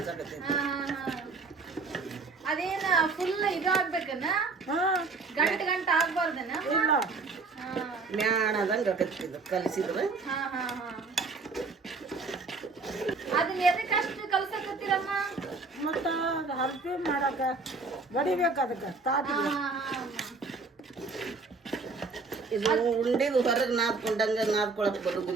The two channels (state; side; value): quieter; left; 4.1 dB